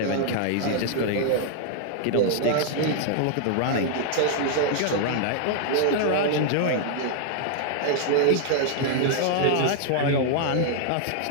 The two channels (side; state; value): both; different; correlation -0.01